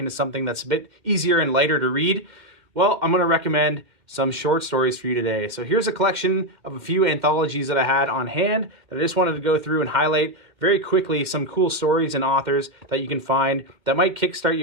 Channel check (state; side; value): late; left; 2.1 ms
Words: something that's a bit easier and lighter to read. Well, I'm going to recommend some short stories for you today. So here's a collection of a few anthologies that I had on hand that I just wanted to go through and highlight very quickly some cool stories and authors that you can find that might kickstart